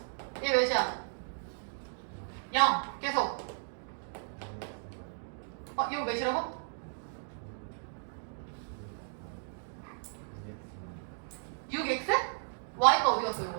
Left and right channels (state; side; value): silent; left; digital silence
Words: 얘 몇이야? 0 계속. 이거 몇이라고? 6x? y가 어디 갔어